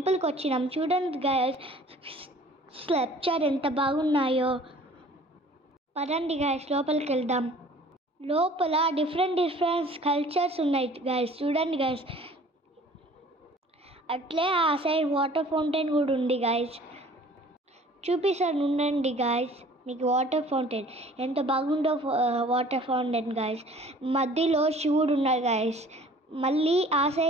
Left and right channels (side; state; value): both; normal; correlation 0.50